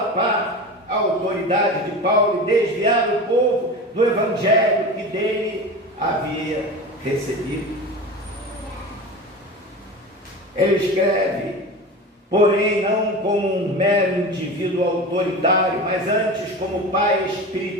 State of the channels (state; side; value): normal; both; correlation 0.30